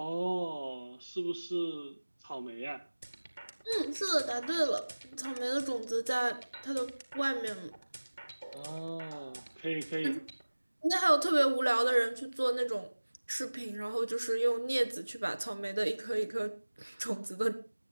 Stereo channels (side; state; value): both; inverted; correlation -1.00